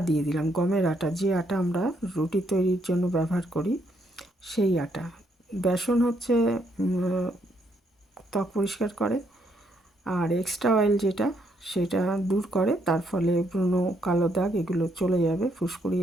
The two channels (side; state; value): both; normal; correlation 0.73